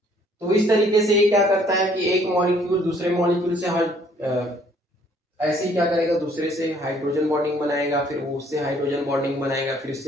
तो इस तरीके से ये क्या करता है कि एक मॉलिक्यूल दूसरे मॉलिक्यूल से ऐसे ही क्या करेगा, दूसरे से हाइड्रोजन बॉन्डिंग बनाएगा, फिर वो उससे हाइड्रोजन बॉन्डिंग बनाएगा, फिर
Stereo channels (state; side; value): normal; both; correlation 0.61